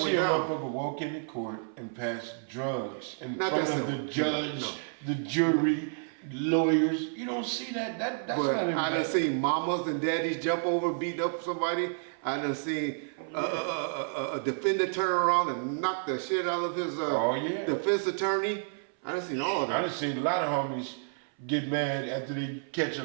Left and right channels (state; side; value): silent; left; 58 dB below the other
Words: a down. motherfucker walk into court and pass drugs in Not front that of the simple. judge, No. the jury, lawyers. You don't see that. That's but not I done in seen mamas and daddies jump over, beat up somebody. I done seen a defender turn around and knock the shit out of his defense attorney. I done seen all of I that. done seen a lot of homies get mad after they catch a